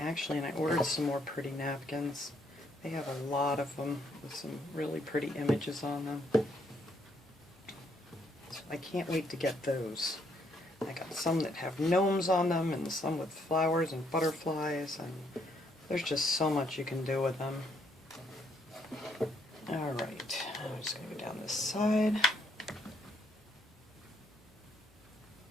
and I ordered some more pretty napkins. They have a lot of them with some really pretty images on them. So I can't wait to get those. I got some that have gnomes on them and some with flowers and butterflies, and there's just so much you can do with them. Alright, I'm just going to go down this side.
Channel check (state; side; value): normal; both; correlation 0.71